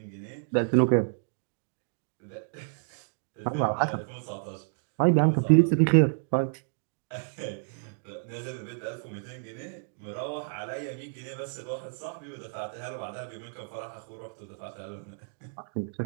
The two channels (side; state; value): left; silent; digital silence